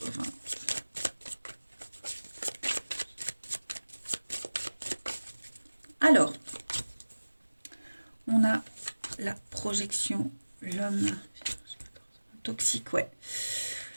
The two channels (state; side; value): inverted; both; correlation -1.00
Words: Alors, on a la projection, l'homme toxique, ouais.